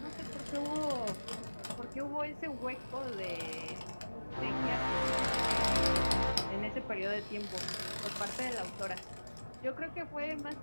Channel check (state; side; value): inverted; both; correlation -1.00